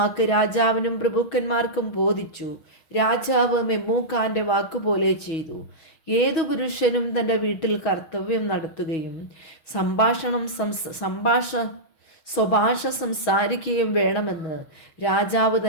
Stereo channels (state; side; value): late; right; 6.2 ms